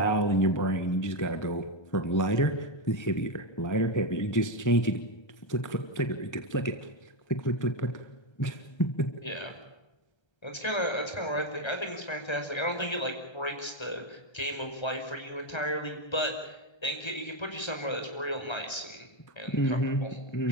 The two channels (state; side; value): late; right; 1.3 ms